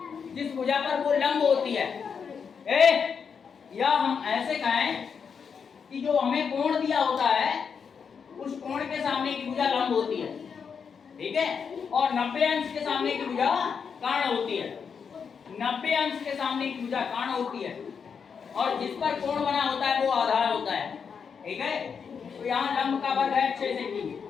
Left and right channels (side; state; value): right; quieter; 6.4 dB